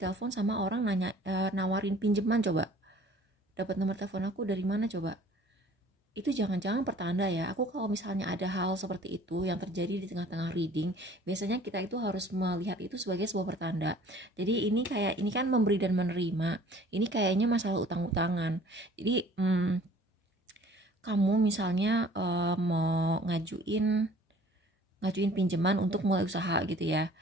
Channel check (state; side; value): normal; both; correlation 0.51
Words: sama orang nawarin pinjaman. Coba dapat nomor telepon aku dari mana coba? Itu jangan-jangan pertanda ya. Aku kalau misalnya ada hal seperti itu yang terjadi di tengah-tengah reading, biasanya kita itu harus melihat itu sebagai sebuah pertanda. Jadi ini kan memberi dan menerima. Ini kayaknya masalah utang-utangan. Jadi kamu misalnya mau ngajuin pinjaman untuk mulai usaha gitu ya.